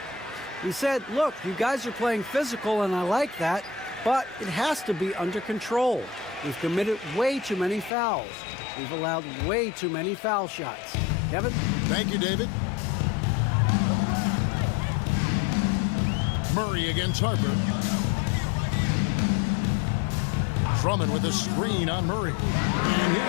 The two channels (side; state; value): right; drops out; at 7.9 s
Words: He said, look, you guys are playing physical, and I like that, but it has to be under control. We've committed way too many fouls. We've allowed way too many foul shots. Kevin? Thank you, David. Murray against Harper. Drummond with a screen on Murray. And